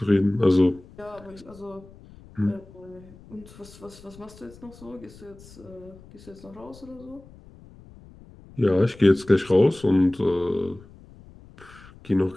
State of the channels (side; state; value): left; noise; rumble, 22 dB below the sound